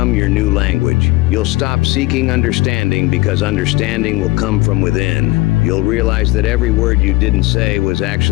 your new language. You'll stop seeking understanding because understanding will come from within. You'll realize that every word you didn't say was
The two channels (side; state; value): right; quieter; 20.2 dB